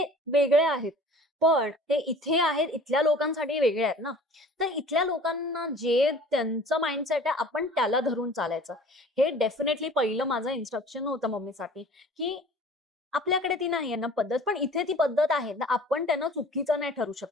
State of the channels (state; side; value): normal; both; correlation 0.46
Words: वेगळ्या आहेत, पण ते इथे आहेत इथल्या लोकांसाठी वेगळे आहेत ना. तर इथल्या लोकांना जे त्यांचं माइंडसेट आहे आपण त्याला धरून चालायचं. हे डेफिनेटली पहिलं माझं इन्स्ट्रक्शन होतं मम्मीसाठी, की आपल्याकडे ती नाही आहे ना पद्धत, पण इथे ती पद्धत आहे ना, आपण त्यांना चुकीचं नाही ठरू